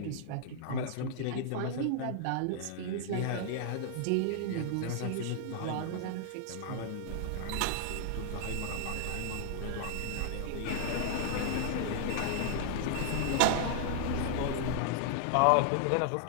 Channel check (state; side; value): different; both; correlation -0.01